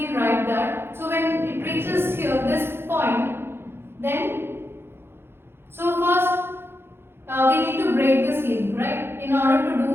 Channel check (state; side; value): late; left; 0.11 ms